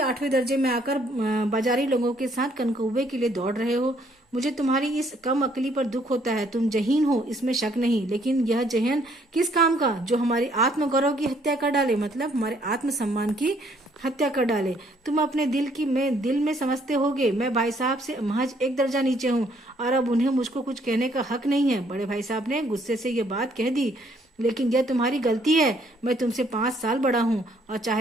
दर्जे में आकर बाजारी लोगों के साथ कनकौवे के लिए दौड़ रहे हो। मुझे तुम्हारी इस कम अकली पर दुख होता है। तुम जहीन हो, इसमें शक नहीं, लेकिन यह जहन किस काम का, जो हमारी आत्मगौरव की हत्या कर डाले, मतलब हमारे आत्मसम्मान की हत्या कर डाले। तुम अपने दिल में समझते होगे मैं भाई साहब से महज एक दर्जा नीचे हूँ और अब उन्हें मुझको कुछ कहने का हक नहीं है। बड़े भाई साहब ने गुस्से से ये बात कह दी। लेकिन यह तुम्हारी गलती है। मैं तुमसे 5 साल बड़ा हूँ और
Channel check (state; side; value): normal; both; correlation 0.66